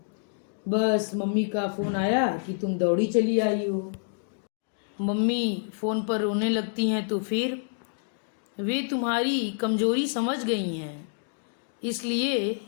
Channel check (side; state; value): right; silent; digital silence